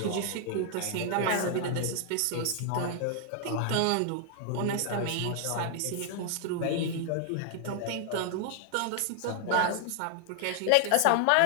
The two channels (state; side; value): different; both; correlation 0.00